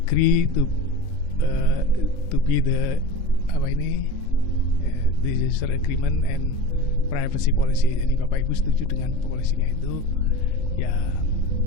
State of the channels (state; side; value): late; right; 3.6 ms